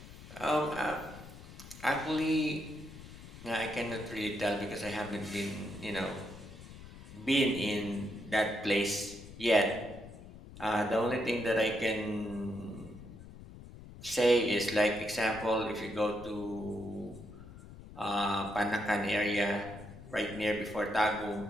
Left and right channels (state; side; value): noise; left; rumble, 16 dB below the sound